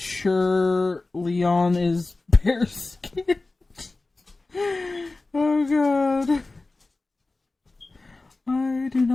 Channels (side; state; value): right; quieter; 3.3 dB